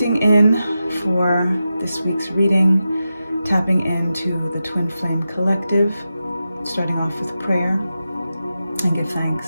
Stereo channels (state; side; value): inverted; both; correlation -0.91